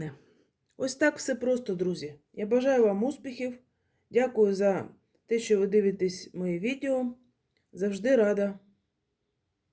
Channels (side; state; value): both; identical; correlation 1.00